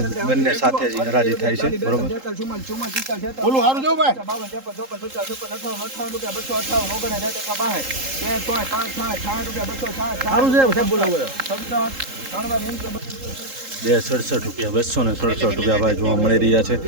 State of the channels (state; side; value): late; left; 3.8 ms